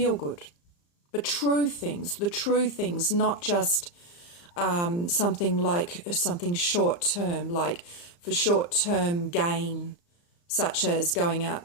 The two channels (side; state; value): right; late; 35 ms